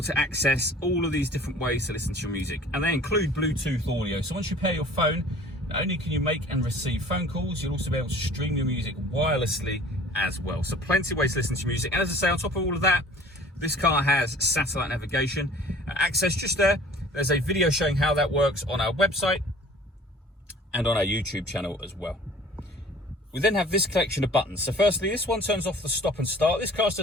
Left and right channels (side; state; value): both; normal; correlation 0.47